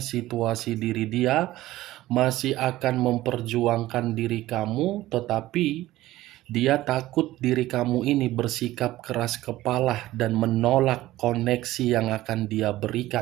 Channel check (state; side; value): quieter; left; 16.2 dB